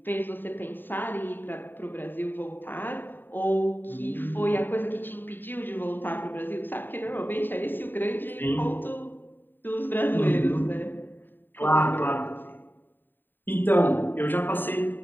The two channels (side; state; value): right; late; 0.093 ms